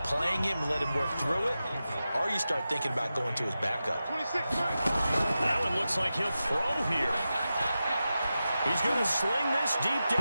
playing him and let him work through it, or you start thinking about going to his backup. That one looks like he'll throw here. He's going to sling this deep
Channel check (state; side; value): inverted; both; correlation -0.92